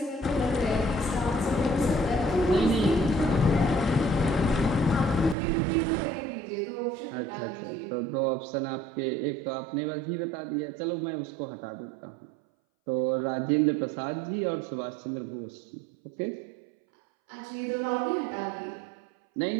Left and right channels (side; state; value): left; drops out; at 5.4 s